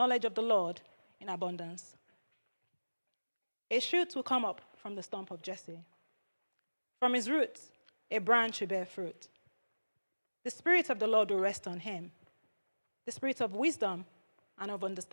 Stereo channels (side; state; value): both; inverted; correlation -1.00